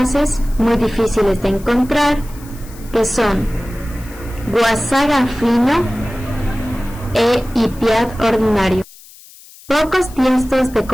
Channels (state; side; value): noise; left; hiss, 22 dB below the sound